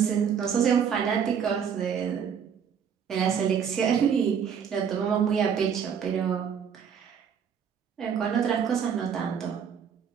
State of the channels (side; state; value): left; quieter; 7.5 dB